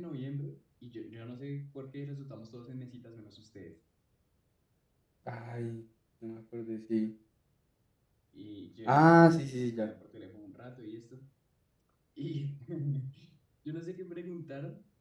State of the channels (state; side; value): identical; both; correlation 1.00